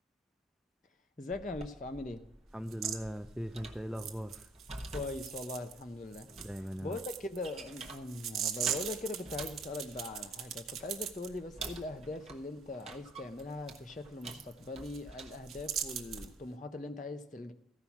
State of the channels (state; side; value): normal; both; correlation 0.58